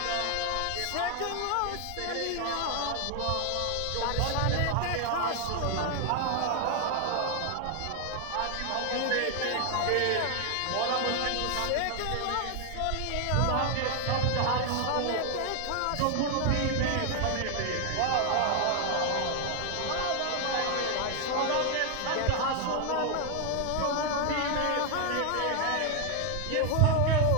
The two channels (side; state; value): both; different; correlation 0.00